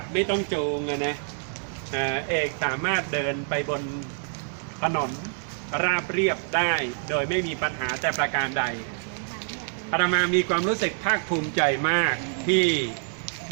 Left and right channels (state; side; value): silent; left; 61 dB below the other